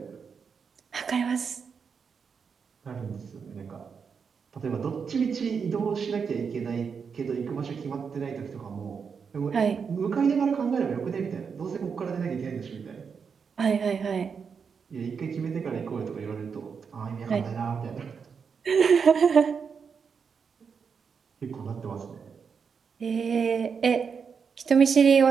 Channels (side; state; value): left; quieter; 6.1 dB